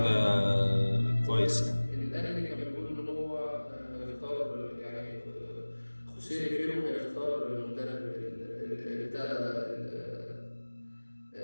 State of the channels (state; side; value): inverted; both; correlation -1.00